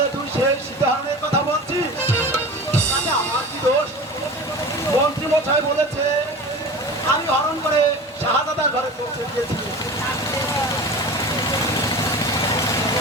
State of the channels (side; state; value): both; normal; correlation 0.34